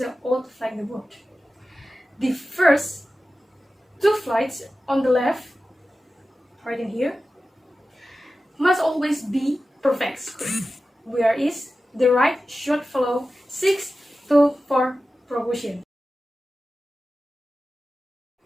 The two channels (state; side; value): normal; both; correlation 0.94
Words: an old flag in the world? The first two flags on the left, right in here, must always be perfect square, whereas the right should follow 6 to 4 proportion.